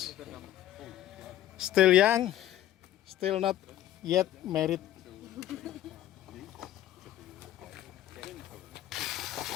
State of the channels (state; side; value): quieter; right; 12.8 dB